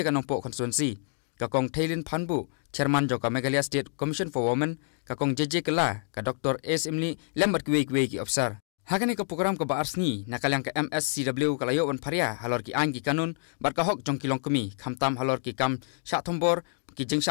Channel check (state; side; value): silent; right; digital silence